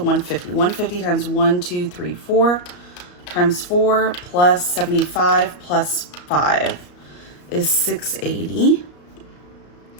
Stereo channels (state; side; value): late; right; 34 ms